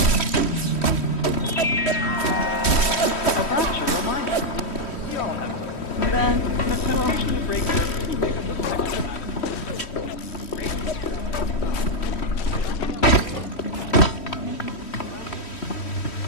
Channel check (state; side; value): late; right; 3.1 ms